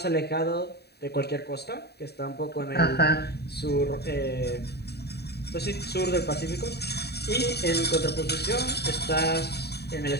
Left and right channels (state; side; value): late; right; 0.48 ms